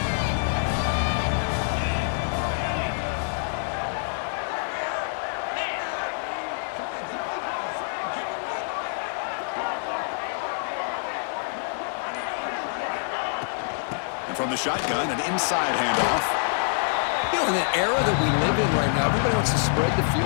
And from the shotgun, an inside handoff. You know, in the era that we live in right now, everybody wants to spread the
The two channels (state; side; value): silent; right; digital silence